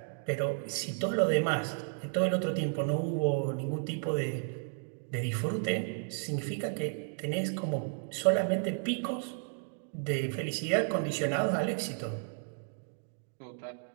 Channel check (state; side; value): silent; left; 56 dB below the other